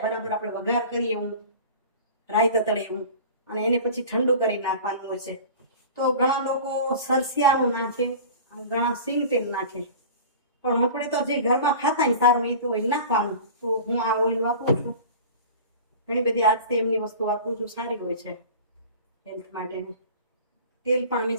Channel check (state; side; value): inverted; both; correlation -0.38